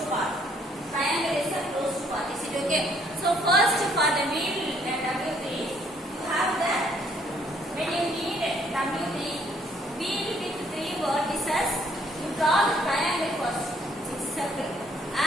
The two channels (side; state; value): both; normal; correlation 0.66